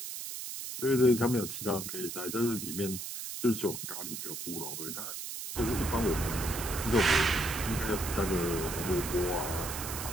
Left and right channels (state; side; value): noise; right; hiss, 7 dB below the sound